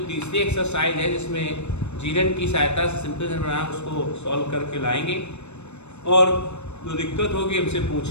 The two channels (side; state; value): right; late; 0.82 ms